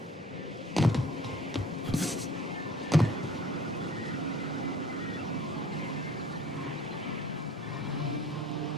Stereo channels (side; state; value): both; normal; correlation 0.50